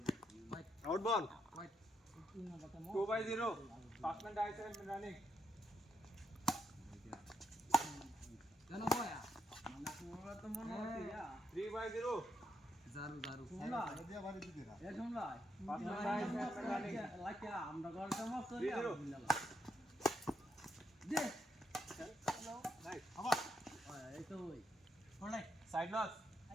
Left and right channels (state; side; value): normal; both; correlation 0.78